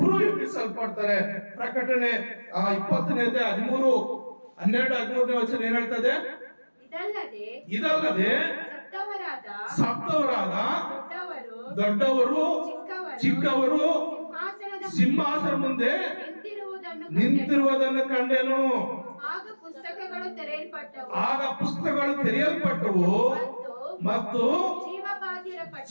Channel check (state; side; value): inverted; both; correlation -1.00